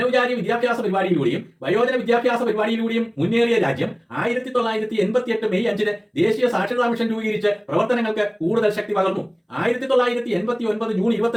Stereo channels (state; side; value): identical; both; correlation 1.00